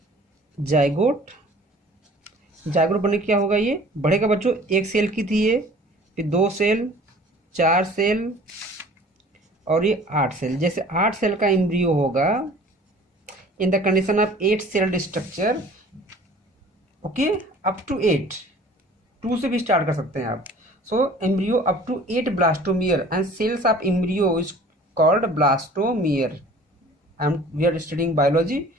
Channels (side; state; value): both; normal; correlation 0.48